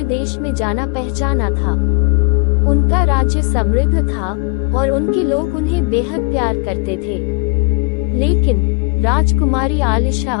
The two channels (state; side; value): quieter; right; 35.7 dB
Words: में जाना पहचाना था। उनका राज्य समृद्ध था और उनके लोग उन्हें बेहद प्यार करते थे। लेकिन राजकुमारी आलिशा